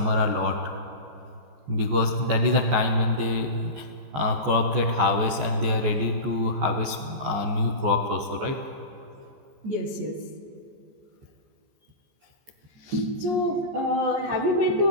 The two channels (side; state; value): left; late; 14 ms